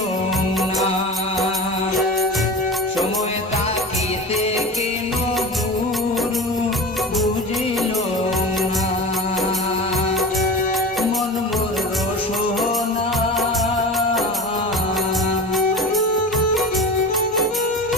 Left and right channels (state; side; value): normal; both; correlation 0.32